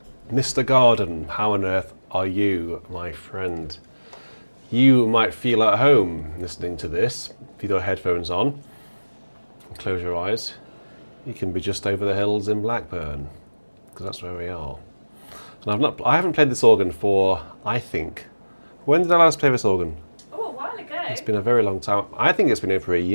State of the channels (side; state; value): both; inverted; correlation -1.00